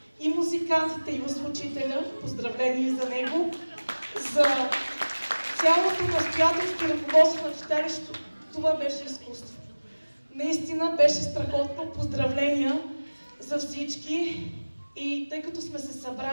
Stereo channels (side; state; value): both; inverted; correlation -1.00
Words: и музикантите, и озвучителя, поздравления за него, за цялото настоятелство и ръководство на читалището. Това беше изкуство. Наистина беше страхотно. Поздравления за всички. И тъй като сме се